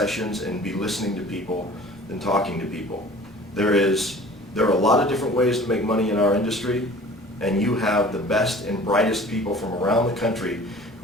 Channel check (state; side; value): normal; both; correlation 0.46